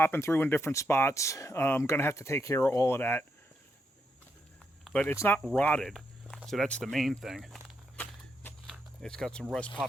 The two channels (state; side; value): normal; both; correlation 0.80